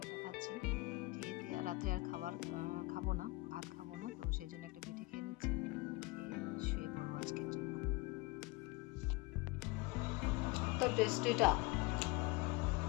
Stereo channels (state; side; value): quieter; right; 22.5 dB